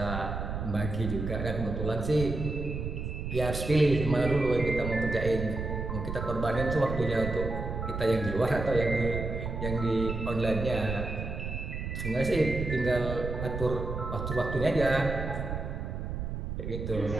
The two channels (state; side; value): noise; right; rumble, 4 dB below the sound